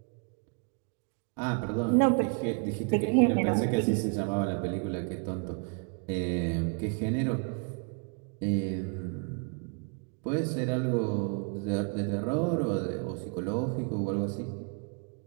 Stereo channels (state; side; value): quieter; left; 38.9 dB